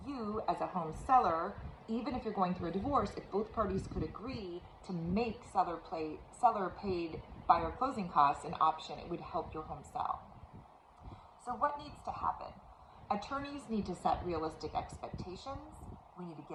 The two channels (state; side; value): identical; both; correlation 1.00